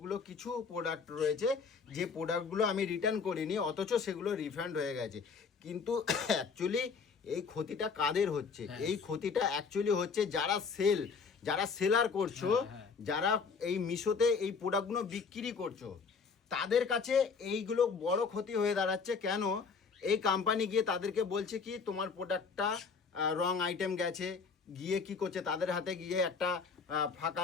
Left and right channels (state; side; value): quieter; right; 5.3 dB